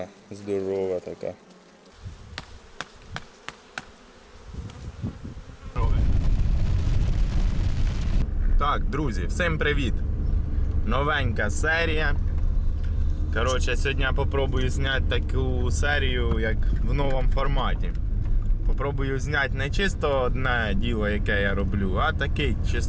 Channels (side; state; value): both; identical; correlation 1.00